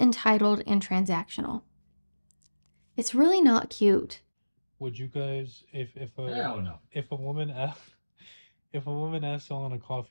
and transactional? It's really not cute. Would you guys, Hell no. if a woman if a woman asked you on a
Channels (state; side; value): inverted; both; correlation -1.00